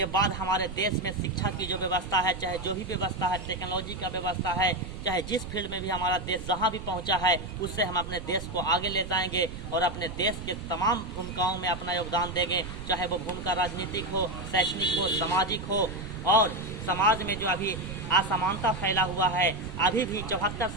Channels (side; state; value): right; noise; rumble, 9 dB below the sound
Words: बाद हमारे देश में शिक्षा की जो व्यवस्था है, चाहे जो भी व्यवस्था है, टेक्नोलॉजी का व्यवस्था है, चाहे जिस फील्ड में भी हमारा देश जहां भी पहुंचा है, उससे हम अपने देश को आगे ले जाएंगे और अपने देश के तमाम भूमिकाओं में अपना योगदान देंगे, चाहे वो भूमिका राजनीतिक हो, शैक्षणिक हो, सामाजिक हो। और समाज में जो अभी असमानता फैला हुआ है, अभी भी 74